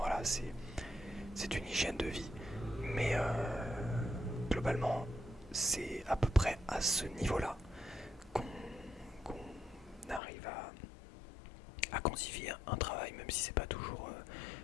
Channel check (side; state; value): right; drops out; at 10.2 s